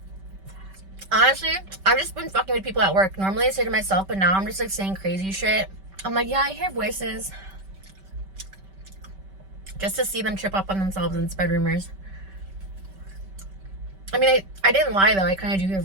Honestly, I've just been fucking with people at work. Normally I say to myself, but now I'm just like saying crazy shit. I'm like, yeah, I hear voices. Just to see them trip up on themselves and spread rumors. I mean, I didn't lie though. I kind of do hear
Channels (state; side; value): late; left; 5.2 ms